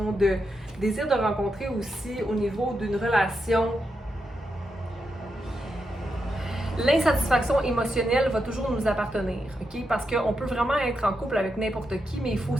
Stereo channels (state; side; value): normal; both; correlation 0.85